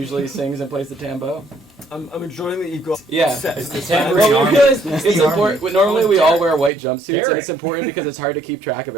sings and plays the tambo. I'm enjoying that you've got Yeah. sets. The tambourine Well, we army. realized it's important. Normally we all wear white jumpsuits, and Derek. it's important because it's hard to keep track of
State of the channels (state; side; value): drops out; left; at 6.7 s